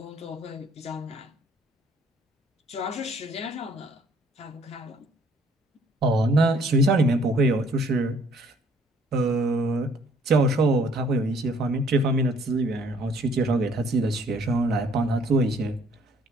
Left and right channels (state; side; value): normal; both; correlation 0.60